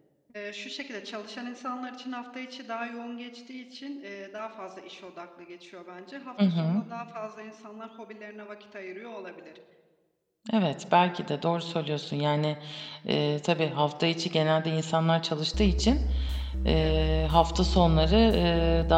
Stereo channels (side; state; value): both; identical; correlation 1.00